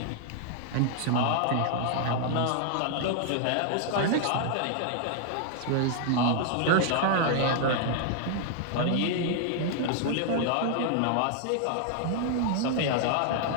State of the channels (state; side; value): different; both; correlation 0.00